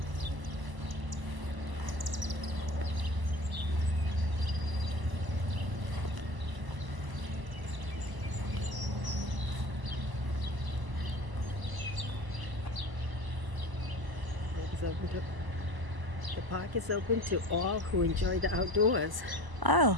The park is open to all who enjoy the outdoors. Oh,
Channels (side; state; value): left; late; 1.0 ms